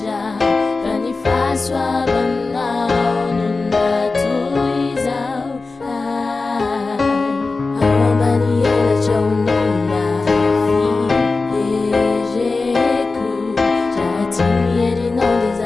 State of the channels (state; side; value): quieter; right; 3.8 dB